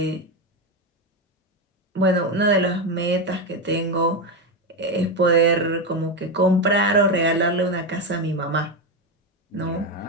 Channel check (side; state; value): both; normal; correlation 0.11